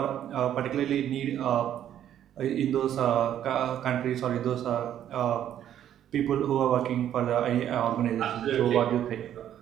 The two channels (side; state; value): left; quieter; 10.7 dB